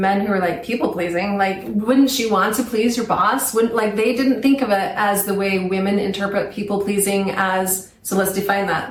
who were like, people pleasing, like, wouldn't you want to please your boss? They didn't think of it as the way women interpret people pleasing as. So let's define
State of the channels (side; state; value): both; identical; correlation 1.00